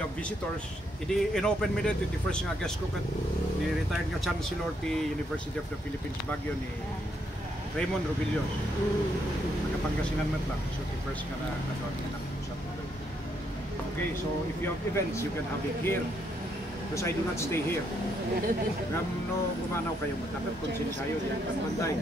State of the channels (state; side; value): normal; both; correlation 0.75